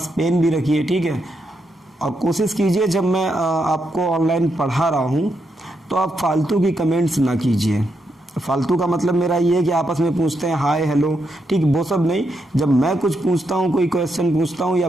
पेन भी रखिए, ठीक है। और कोशिश कीजिए जब मैं आपको ऑनलाइन पढ़ा रहा हूँ तो आप फालतू की कमेंट्स ना कीजिए। फालतू का मतलब मेरा ये है कि आपस में पूछते हैं हाय हेलो, ठीक, वो सब नहीं। जब मैं कुछ पूछता हूँ, कोई क्वेश्चन पूछता हूँ, या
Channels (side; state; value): both; normal; correlation 0.82